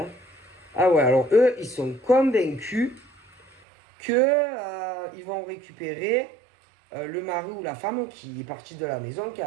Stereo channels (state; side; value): drops out; left; at 3.5 s